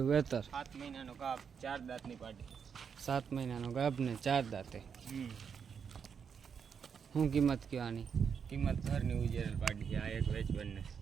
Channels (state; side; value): quieter; left; 6.8 dB